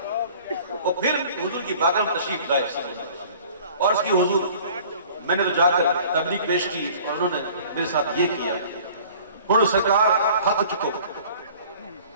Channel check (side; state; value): both; inverted; correlation -0.49